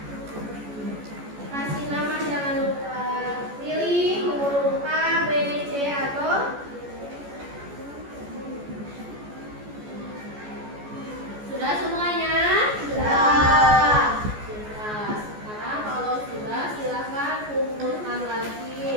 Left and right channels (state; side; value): late; left; 14 ms